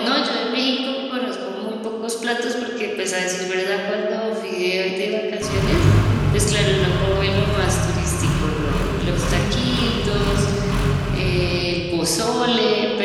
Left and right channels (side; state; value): both; identical; correlation 1.00